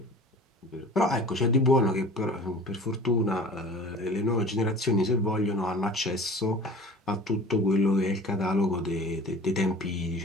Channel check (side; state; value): both; normal; correlation 0.42